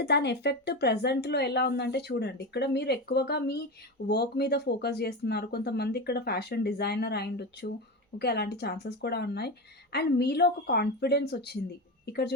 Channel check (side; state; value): both; normal; correlation 0.20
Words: దాని ఎఫెక్ట్ ప్రెజెంట్‌లో ఎలా ఉందంటే చూడండి, ఇక్కడ మీరు ఎక్కువగా మీ వర్క్ మీద ఫోకస్ జేస్తున్నారు. కొంతమంది ఇక్కడ ఫ్యాషన్ డిజైనర్ అయ్యుండొచ్చు. ఓకే. అలాంటి ఛాన్సెస్ కూడా ఉన్నాయి. అండ్ మీలో ఒక కాన్ఫిడెన్స్ ఒచ్చింది. ఇక్కడ